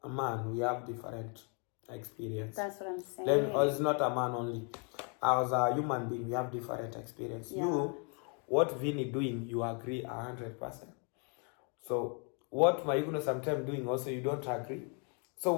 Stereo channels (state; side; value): quieter; right; 37.6 dB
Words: man, we have different experience. That's what I'm saying. It's not a man only. As a human being, we have different experience. Yeah. You, what Vinny doing, you agree 100%. So what Mayugno sometimes doing also, you don't agree. So